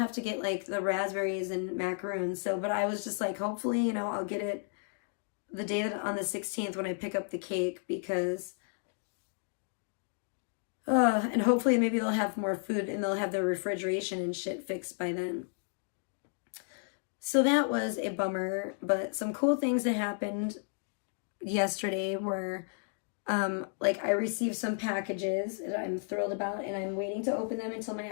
to get like the raspberries and macaroons. So, but I was just like, hopefully, I'll get it the day on the 16th when I pick up the cake, because and hopefully maybe they'll have more food and they'll have their refrigeration and shit fixed by then. So that was a bummer, but some cool things that happened yesterday were like I received some packages that I'm thrilled about, and I'm waiting to open them until my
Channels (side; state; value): right; silent; 56 dB below the other